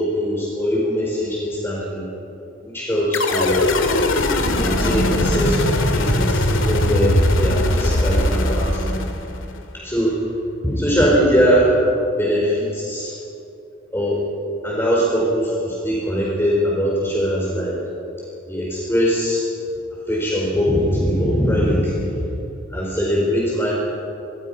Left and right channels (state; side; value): normal; both; correlation 0.54